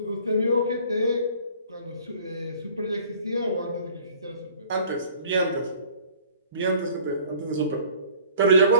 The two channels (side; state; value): both; inverted; correlation -0.52